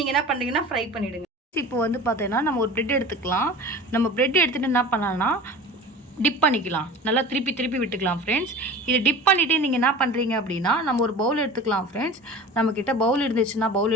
என்ன பண்ணுறீங்கன்னா ஃப்ரை பண்ணிவிடுங்க. இப்போ வந்து பார்த்தீங்கன்னா நம்ம ஒரு பிரெட் எடுத்துக்கலாம். நம்ம பிரெட் எடுத்துகிட்டு என்ன பண்ணலாம்னா டிப் பண்ணிக்கலாம். நல்லா திருப்பி விட்டுக்கலாம் ஃப்ரெண்ட்ஸ். இதை டிப் பண்ணிவிட்டு நீங்கள் என்ன பண்ணுறீங்க அப்படின்னா நம்ம ஒரு பவுல் எடுத்துக்கலாம் ஃப்ரெண்ட்ஸ். நம்மக்கிட்ட பவுல் இருந்துச்சுன்னா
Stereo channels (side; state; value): both; normal; correlation 0.37